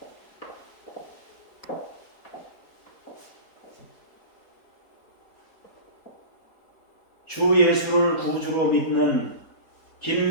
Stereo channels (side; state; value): right; late; 4.3 ms